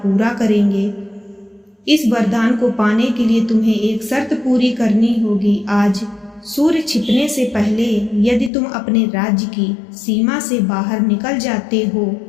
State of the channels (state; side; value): drops out; right; at 8.5 s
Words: करेंगे। इस वरदान को पाने के लिए तुम्हें एक शर्त पूरी करनी होगी। आज सूर्य छिपने से पहले यदि तुम अपने राज्य की सीमा से बाहर निकल जाते हो